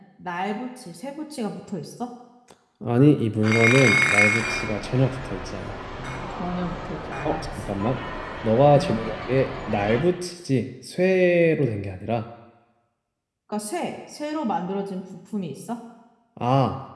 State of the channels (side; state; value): both; identical; correlation 1.00